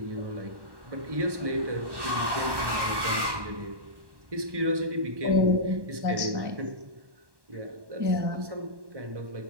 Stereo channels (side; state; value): left; late; 1.1 ms